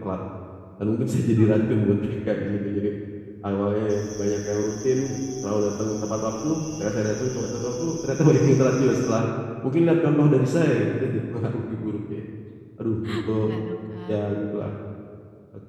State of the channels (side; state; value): both; identical; correlation 1.00